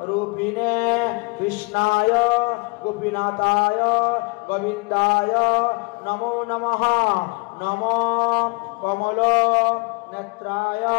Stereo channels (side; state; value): right; quieter; 29.8 dB